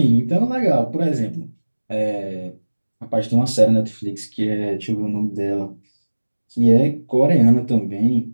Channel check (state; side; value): inverted; both; correlation -1.00